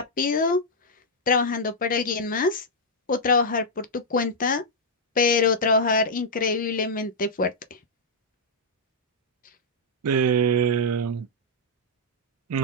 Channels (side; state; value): both; normal; correlation -0.06